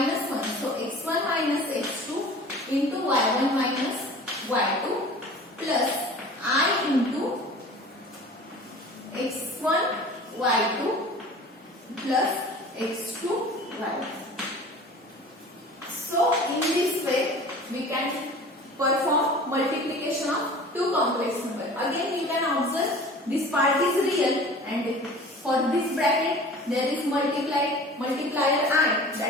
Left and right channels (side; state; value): both; normal; correlation 0.42